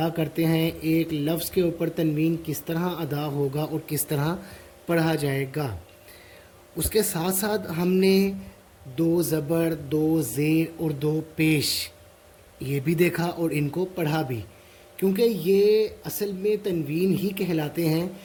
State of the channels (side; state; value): both; identical; correlation 1.00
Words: کرتے ہیں، ایک لفظ کے اوپر تنوین کس طرح ادا ہوگا اور کس طرح پڑھا جائے گا۔ اس کے ساتھ ساتھ ہم نے دو زبر، دو زیر اور دو پیش یہ بھی دیکھا اور ان کو پڑھا بھی، کیونکہ یہ اصل میں تنوین ہی کہلاتے ہیں،